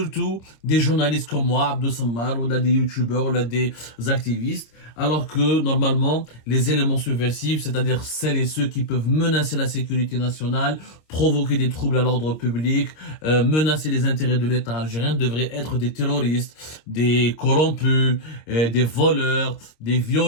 des journalistes comme moi, Abdou Sammar, ou là des youtubeurs, ou là des activistes, alors que normalement les éléments subversifs, c'est-à-dire celles et ceux qui peuvent menacer la sécurité nationale, provoquer des troubles à l'ordre public, menacer les intérêts de l'État algérien, devraient être des terroristes, des corrompus, des voleurs, des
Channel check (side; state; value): right; late; 26 ms